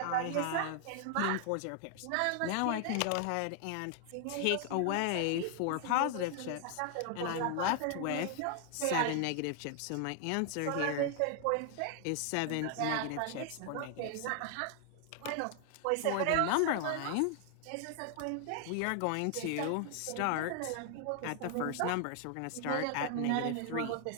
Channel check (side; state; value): both; different; correlation 0.00